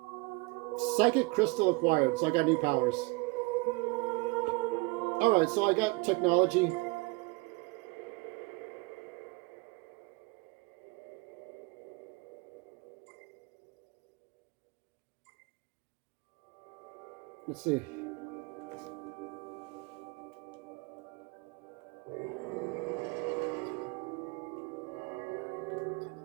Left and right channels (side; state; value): left; quieter; 26.3 dB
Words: Psychic crystal acquired, so I got new powers. Alright, so I got technology. Let's see.